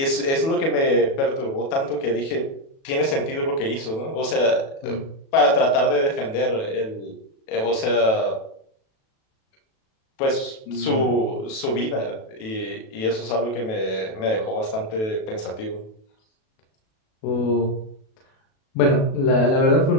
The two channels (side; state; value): right; late; 37 ms